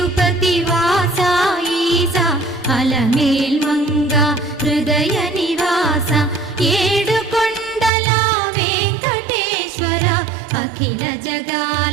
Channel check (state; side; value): drops out; left; at 7.9 s